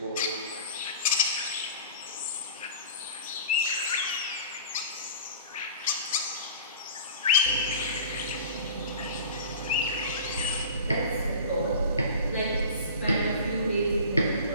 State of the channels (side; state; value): both; inverted; correlation -0.39